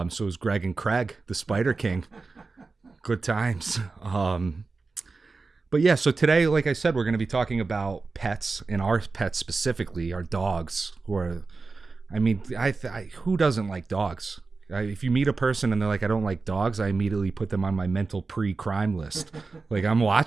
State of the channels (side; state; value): left; quieter; 4.1 dB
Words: it was Greg and Craig, the Spider King. Good times. But yeah, so today, like I said, we're going to be talking about pets, and our pets specifically, our dogs. Who doesn't like dogs? If you meet a person and they're like, I don't like dogs, I immediately put them on my mental pre-crime list. Like, I'm